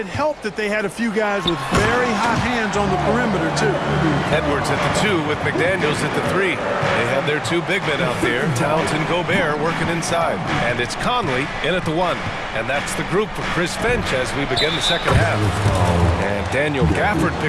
helped that they had a few guys with very hot hands on the perimeter, too. Edwards at the 2 with McDaniels at the 3. They have their 2 big men out there, Towns and Gobert, working inside. And it's Conley in at the 1. And that's the group for Chris Finch as we begin the second half. And Daniel Gafford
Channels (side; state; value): both; identical; correlation 1.00